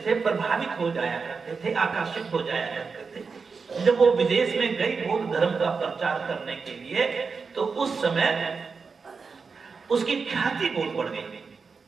थे, प्रभावित हो जाया करते थे, आकर्षित हो जाया करते थे। जब वो विदेश में गई बौद्ध धर्म का प्रचार करने के लिए, तो उस समय उसकी ख्याति बहुत बढ़ गई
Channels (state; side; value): quieter; left; 5.0 dB